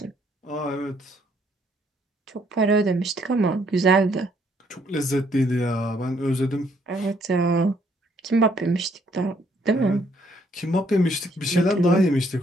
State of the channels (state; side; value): normal; both; correlation 0.68